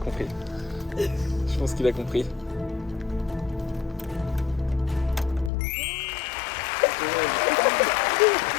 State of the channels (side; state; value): right; drops out; at 5.5 s